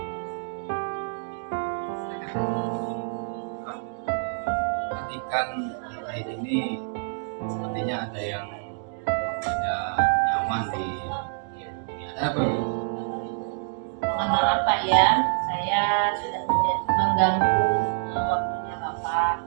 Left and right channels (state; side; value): silent; left; digital silence